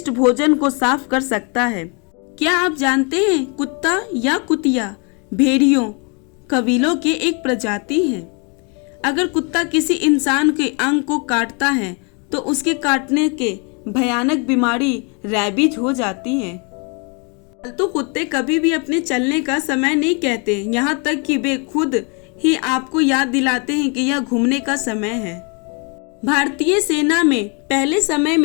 भोजन को साफ कर सकता है। क्या आप जानते हैं कुत्ता या कुतिया भेड़ियों कबीलों के एक प्रजाति है। अगर कुत्ता किसी इंसान के अंग को काटता है तो उसके काटने के भयानक बीमारी रैबीज हो जाती है। पालतू कुत्ते कभी भी अपने चलने का समय नहीं कहते, यहाँ तक कि वे खुद ही आपको याद दिलाते हैं कि यह घूमने का समय है। भारतीय सेना में पहले समय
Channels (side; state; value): right; quieter; 34.1 dB